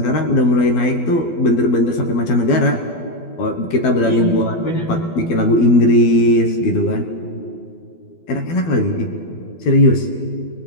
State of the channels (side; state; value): right; late; 12 ms